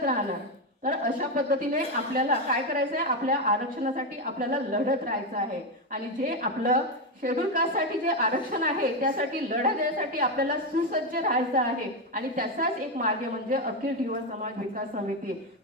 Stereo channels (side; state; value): both; normal; correlation 0.09